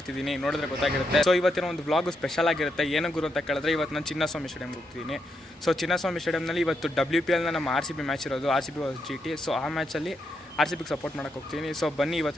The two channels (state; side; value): normal; both; correlation 0.81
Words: ನೋಡಿದ್ರೆ ಗೊತ್ತಾಗಿರುತ್ತೆ. ಸೊ ಇವತ್ತಿನ ಒಂದು ವ್ಲಾಗ್ ಸ್ಪೆಷಲ್ ಆಗಿರುತ್ತೆ. ಏನು ಗುರು ಅಂತ ಕೇಳಿದ್ರೆ, ಇವತ್ತು ನಾನು ಚಿನ್ನಸ್ವಾಮಿ ಸ್ಟೇಡಿಯಂಗೆ ಹೋಗ್ತಿದ್ದೀನಿ. ಸೊ ಚಿನ್ನಸ್ವಾಮಿ ಸ್ಟೇಡಿಯಂನಲ್ಲಿ ಇವತ್ತು WPLನ ನಮ್ಮ RCB ಮ್ಯಾಚ್ ಇರೋದು, RCB GT. ಸೊ ಆ ಮ್ಯಾಚಲ್ಲಿ RCBಗೆ ಸಪೋರ್ಟ್ ಮಾಡೋಕ್ಕೆ ಹೋಗ್ತೀನಿ. ಸೊ ಬನ್ನಿ,